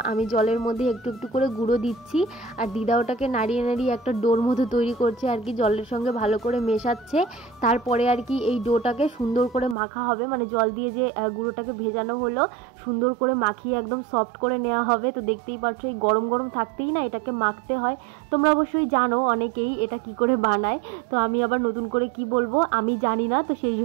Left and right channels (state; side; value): drops out; left; at 9.8 s